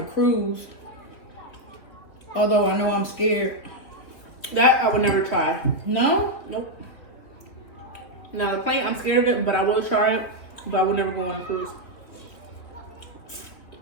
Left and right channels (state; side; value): late; right; 3.0 ms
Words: cruise. Although I know I'm scared. That I would never try. No? Nope. Now the plane, I'm scared of it, but I will try it. But I would never go on a cruise.